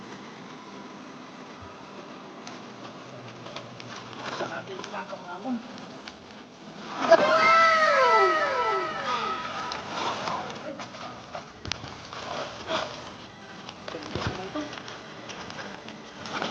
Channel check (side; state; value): both; identical; correlation 1.00